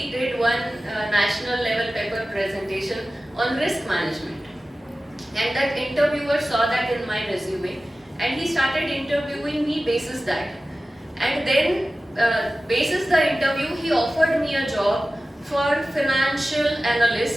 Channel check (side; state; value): both; normal; correlation 0.95